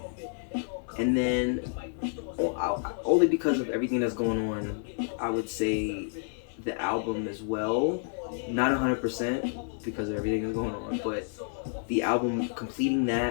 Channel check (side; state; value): right; silent; 58 dB below the other